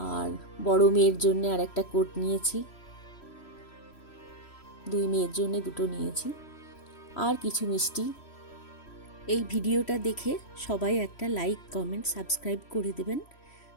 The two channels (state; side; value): late; right; 3.1 ms